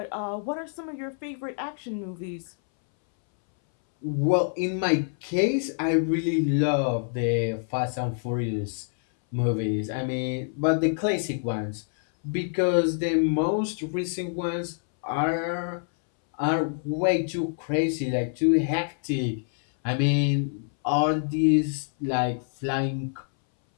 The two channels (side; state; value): right; silent; 61 dB below the other